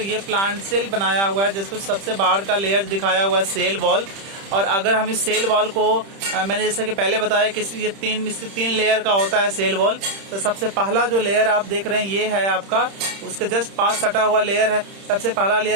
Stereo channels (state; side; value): late; left; 30 ms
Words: ये प्लांट सेल बनाया हुआ है, जिसको सबसे बाहर का लेयर दिखाया हुआ है सेल वॉल। और अगर हम इस सेल वॉल को मैंने जैसे कि पहले बताया कि ये 3 लेयर का होता है सेल वॉल। तो सबसे पहला जो लेयर आप देख रहे हैं ये है आपका, उसके जस्ट पास सटा हुआ लेयर है सबसे पहला